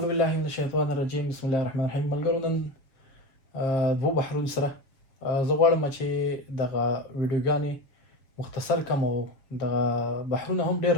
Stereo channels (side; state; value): right; late; 7.3 ms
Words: بالله من الشیطان الرجیم. بسم الله الرحمن الرحیم. ملګرو نن دوه بحرونو سره زه غواړم چې دغه ویډیوګانې مختصر کم او دغه بحرونه هم ډېر